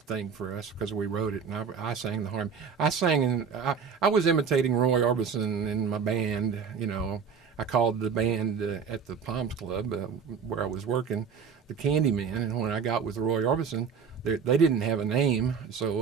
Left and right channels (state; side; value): quieter; left; 6.3 dB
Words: thing for us because we wrote it, and I sang the harmony. I was imitating Roy Orbison in my band. You know, I called the band at the Palms Club where I was working the Candyman, and when I got with Roy Orbison, they didn't have a name, so